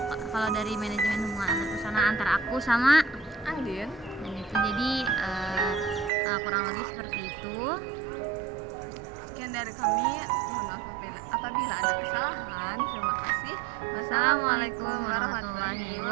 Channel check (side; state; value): left; drops out; at 6.1 s